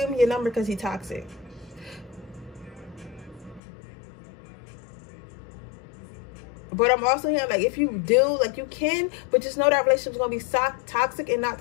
me your number because he's toxic. But I'm also hearing, like, if you do, like, you can, but just know that relationship's going to be toxic and not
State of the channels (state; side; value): drops out; right; at 3.6 s